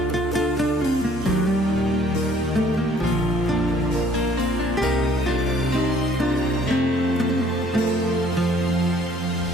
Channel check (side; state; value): both; normal; correlation 0.59